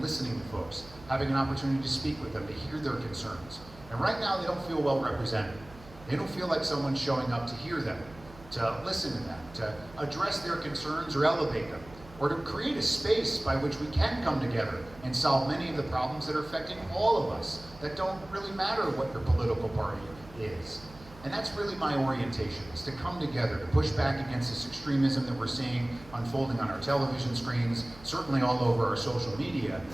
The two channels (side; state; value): right; noise; hum, 20 dB below the sound